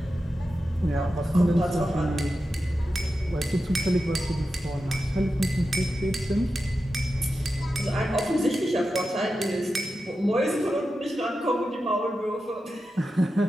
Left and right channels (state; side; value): normal; both; correlation 0.91